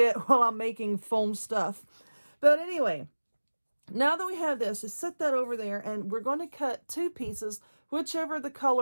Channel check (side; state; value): both; inverted; correlation -1.00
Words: while I'm making foam stuff. But anyway, now that we have this, just set that over there, and we're going to cut two pieces, whichever the